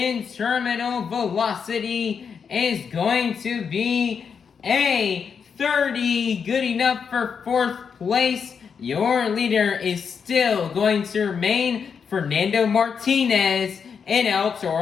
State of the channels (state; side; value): quieter; right; 6.4 dB